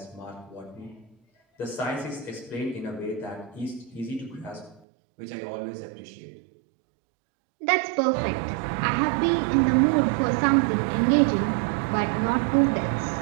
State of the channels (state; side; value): drops out; left; at 4.8 s